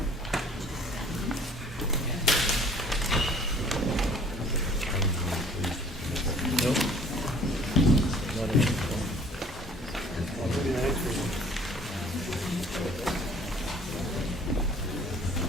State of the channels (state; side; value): normal; both; correlation 0.53